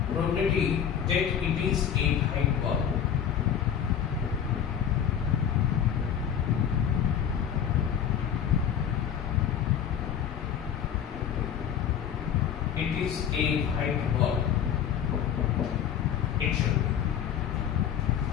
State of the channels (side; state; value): right; quieter; 8.9 dB